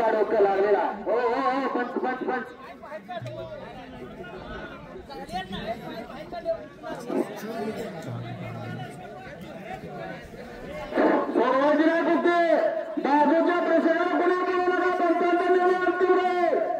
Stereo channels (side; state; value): both; identical; correlation 1.00